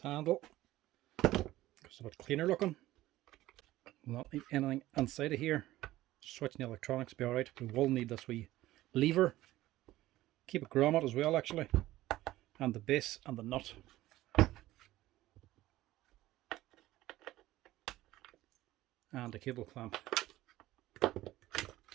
it's a bit cleaner looking. We'll not need anything inside of here. Switching the electronics will be alright. We will need this wee lever. Keep a grommet as well actually. And the base and the nut. And a cable clamp.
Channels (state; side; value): quieter; left; 16.0 dB